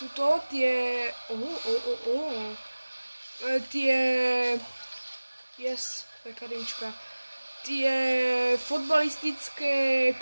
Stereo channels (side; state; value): both; inverted; correlation -1.00